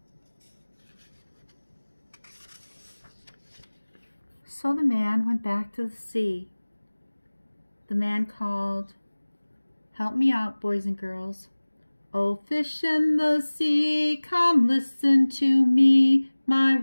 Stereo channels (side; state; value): both; inverted; correlation -1.00